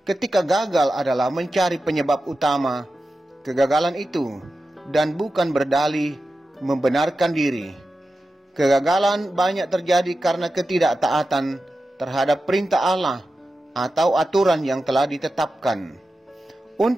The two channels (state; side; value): normal; both; correlation 0.92